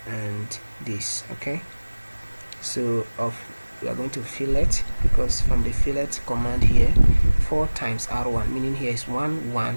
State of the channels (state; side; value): inverted; both; correlation -1.00